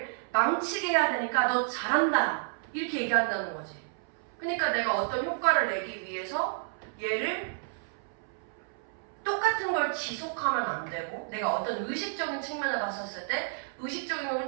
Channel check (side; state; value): left; silent; 57 dB below the other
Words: 망치게 해야 되니까 너 잘한다 이렇게 얘기한다는 거지. 그러니까 내가 어떤 효과를 내기 위해서 얘를 똑같은 걸 지속하면 안 되고 내가 어떤 의식적인 측면을 봤었을 때 의식적인